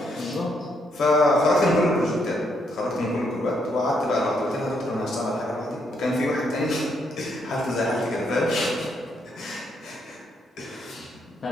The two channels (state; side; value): normal; both; correlation 0.75